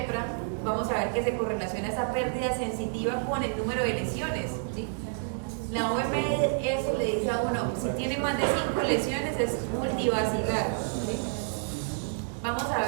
vamos a ver que se correlaciona esa pérdida sensitiva con el número de lesiones, ¿sí? La OMS le dice a uno, si tiene más de 5 lesiones es multivacilar, ¿sí? Vamos a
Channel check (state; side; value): silent; left; 55 dB below the other